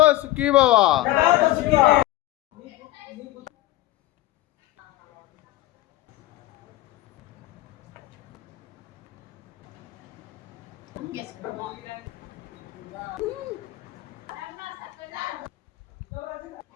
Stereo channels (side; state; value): right; quieter; 17.1 dB